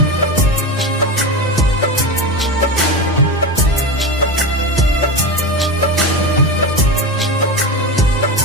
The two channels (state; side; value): normal; both; correlation 0.21